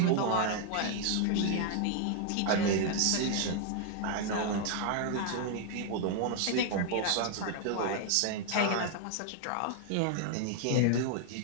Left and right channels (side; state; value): both; different; correlation 0.00